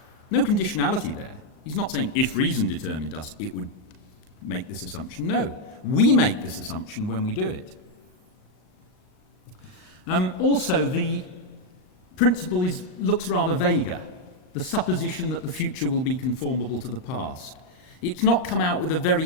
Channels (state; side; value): late; right; 39 ms